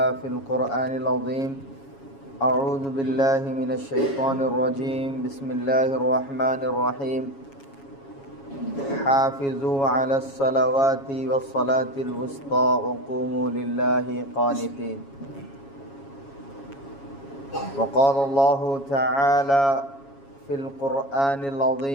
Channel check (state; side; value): late; right; 7.3 ms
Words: في القرآن العظيم أعوذ بالله من الشيطان الرجيم بسم الله الرحمن الرحيم حافظوا على الصلوات والصلاة الوسطى وقوموا لله قانتين وقال الله تعالى في القرآن